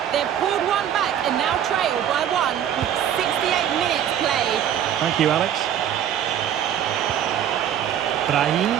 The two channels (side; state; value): left; quieter; 9.9 dB